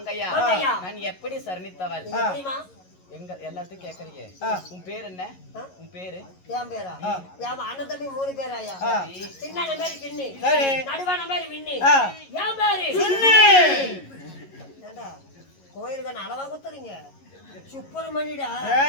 நான் எப்படி சரணித்தவள்? எங்க எல்லாத்தையும் கேக்குறீங்க. உன் பேர் என்ன? உன் பேரு? என் பேரா? என் அண்ணன் தம்பி 3 பேராயா? சின்ன பேரு கிண்ணி, நடுவான பேரு விண்ணி, என் பேரு சுண்ணி. ஏண்டா கோயிலுக்கு அளவா குத்துறீங்க? சுப்பிரமணியடா.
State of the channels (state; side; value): late; right; 11 ms